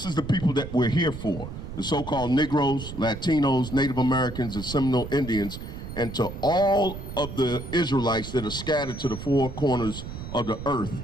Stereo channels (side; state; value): right; noise; rumble, 10 dB below the sound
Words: is the people that we're here for, the so-called Negroes, Latinos, Native Americans, and Seminole Indians, and to all of the Israelites that are scattered to the four corners of the earth,